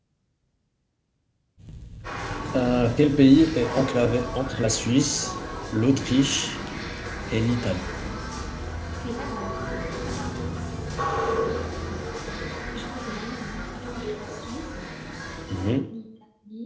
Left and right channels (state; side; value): identical; both; correlation 1.00